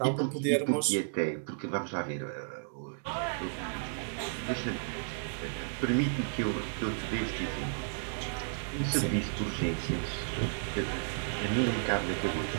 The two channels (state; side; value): silent; left; digital silence